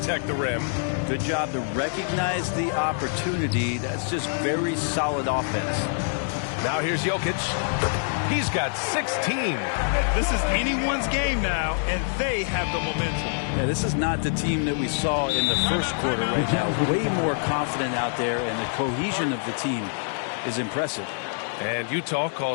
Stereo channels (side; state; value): right; silent; 61 dB below the other